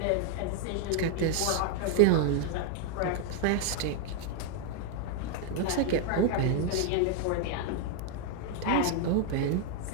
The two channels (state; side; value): different; both; correlation 0.00